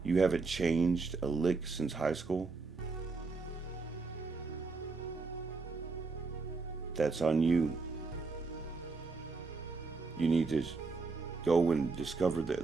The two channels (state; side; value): quieter; left; 4.2 dB